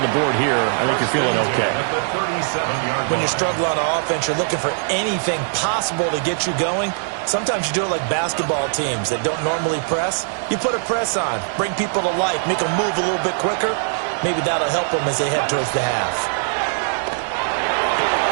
the board here. I think you're feeling okay. When you're struggling on offense, you're looking for anything possible to get you going. Sometimes you do it like basketball teams that don't normally press. You put a press on, bring people to life, make them move a little bit quicker. Maybe that'll help them as they head towards the half.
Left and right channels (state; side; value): silent; left; 65 dB below the other